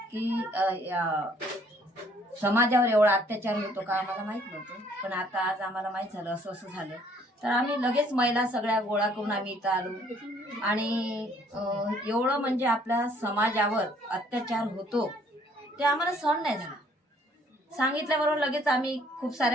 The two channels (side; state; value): both; normal; correlation 0.62